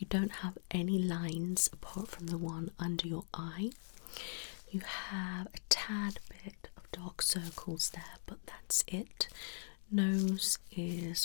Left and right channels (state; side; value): silent; right; digital silence